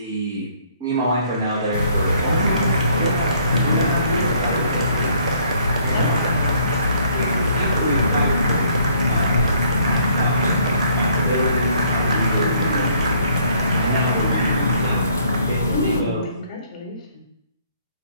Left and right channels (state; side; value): inverted; both; correlation -0.63